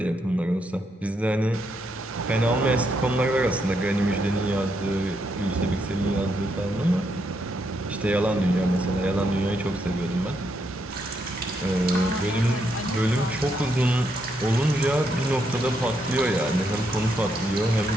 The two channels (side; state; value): both; normal; correlation 0.78